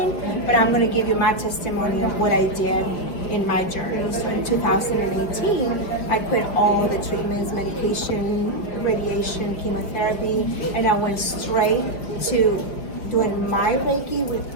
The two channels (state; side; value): late; right; 5.5 ms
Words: but I'm going to give you my testimony of what I did in my journey. So in 2018, I quit all the treatments, medication, radiation, chemotherapy, and I went straight to doing my Reiki